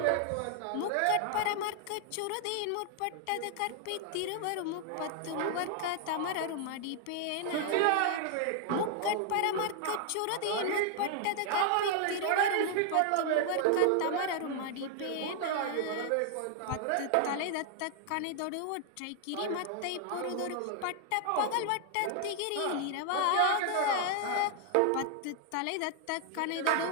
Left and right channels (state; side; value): different; both; correlation 0.00